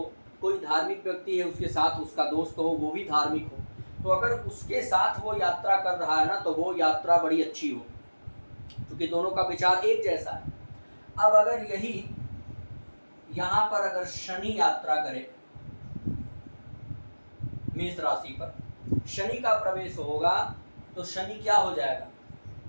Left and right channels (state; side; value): inverted; both; correlation -1.00